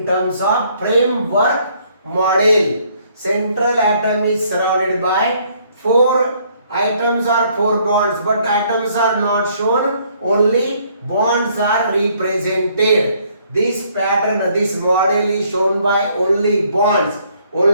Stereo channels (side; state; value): both; inverted; correlation -0.65